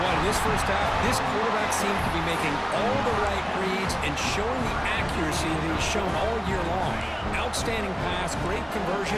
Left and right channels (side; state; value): both; identical; correlation 1.00